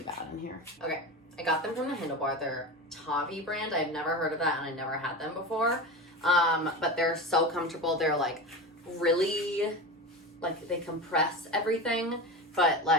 bad in here. Okay, I got them from the HandleBar. They're Tavi brand. I've never heard of that, and I never had them before. But they're so comfortable. They're like really, like they compress everything, but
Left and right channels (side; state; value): both; normal; correlation 0.26